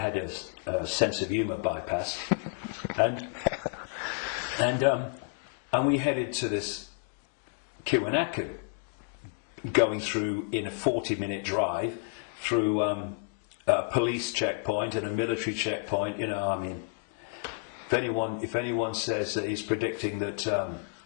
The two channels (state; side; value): silent; right; 58 dB below the other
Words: a sense of humour bypass. And we headed to this Kiwanaku, going through in a 40-minute drive through a police checkpoint and a military checkpoint. You know, I mean, if anyone says that he's predicting that